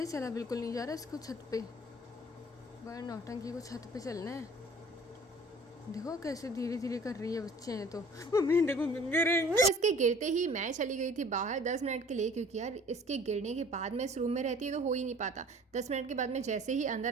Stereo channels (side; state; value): both; normal; correlation 0.49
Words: चला बिल्कुल नहीं जा रहा इसको छत पे। बड़ा नौटंकी को छत पे चलना है। देखो कैसे धीरे धीरे कर रही है, बच्चे हैं तो। मम्मी देखो गिरेंगे। तो इसके गिरते ही मैं चली गई थी बाहर 10 मिनट के लिए, क्योंकि यार इसके गिरने के बाद मैं इस रूम में रहती तो हो ही नहीं पाता। 10 मिनट के बाद मैं जैसे ही